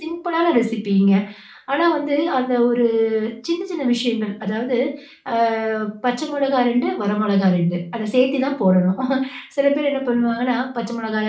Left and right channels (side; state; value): both; identical; correlation 1.00